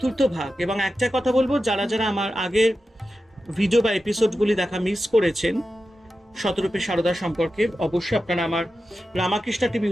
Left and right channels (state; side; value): normal; both; correlation 0.92